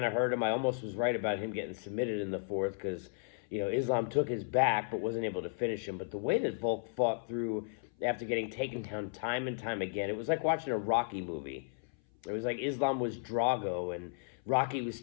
of hurt him. I almost was right about him getting submitted in the fourth because, Islam took his back but wasn't able to finish him. But the way that Volk fought through after getting taken down time and time again, it was like watching a Rocky movie. It was like Islam was Drago and Rocky was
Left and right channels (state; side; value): silent; right; 55 dB below the other